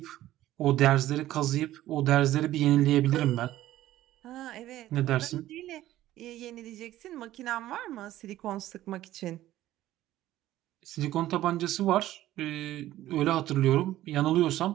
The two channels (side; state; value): left; quieter; 14.4 dB